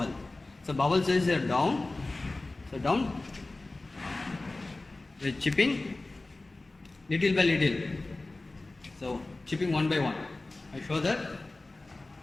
So bubble sides are down. So down. With chipping, little by little. So chipping one by one. I show that.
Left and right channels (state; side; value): quieter; right; 3.1 dB